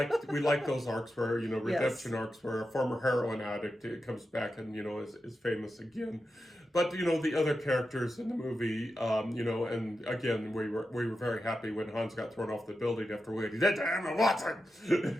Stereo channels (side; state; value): both; normal; correlation 0.90